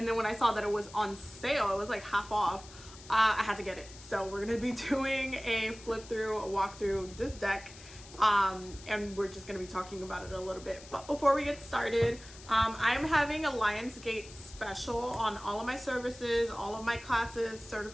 then when I saw that it was on sale, it was like half off, I had to get it. So we're gonna be doing a flip through, a walk through this deck, and we're just gonna be talking about it a little bit. But before we get started, I'm having a Lionsgate special on all of my services, all of my classes,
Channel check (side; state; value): left; noise; hiss, 18 dB below the sound